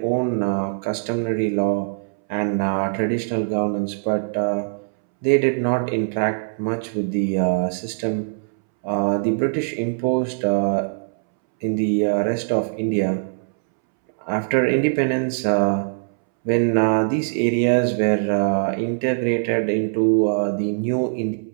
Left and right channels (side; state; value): left; silent; 64 dB below the other